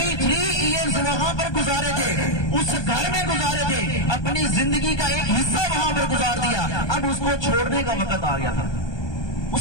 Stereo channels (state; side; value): late; right; 1.2 ms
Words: ایئرز وہاں پر گزارے تھے، اس گھر میں گزارے تھے، اپنی زندگی کا ایک حصہ وہاں پر گزار دیا، اب اس کو چھوڑنے کا وقت آ گیا تھا، اس